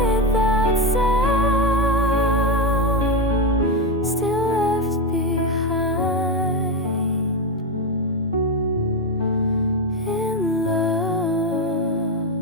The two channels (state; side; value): normal; both; correlation 0.11